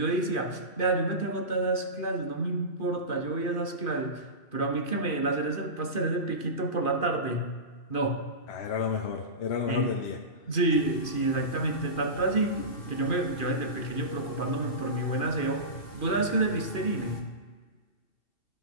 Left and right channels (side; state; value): right; late; 2.5 ms